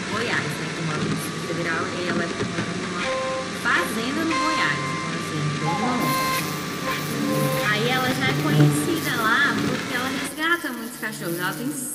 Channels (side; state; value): both; identical; correlation 1.00